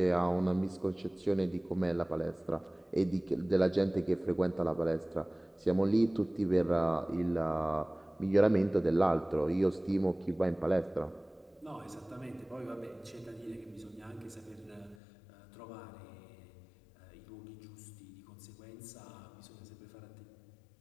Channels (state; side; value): drops out; right; at 15.0 s